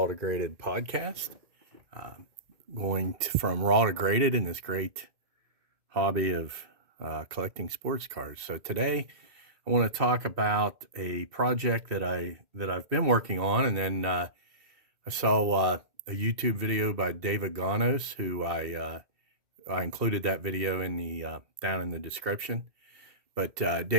to Graded podcast. From raw to graded in this great hobby of collecting sports cars. So today I want to talk about a project that I've been working on, and then I saw a YouTube video by David Gonos, who I included that video in the down in the description. But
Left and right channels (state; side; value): late; left; 2.2 ms